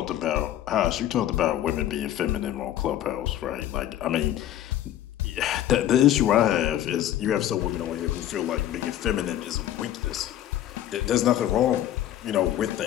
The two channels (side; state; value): right; quieter; 12.2 dB